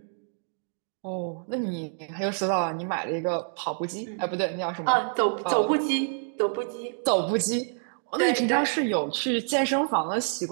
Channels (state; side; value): silent; left; digital silence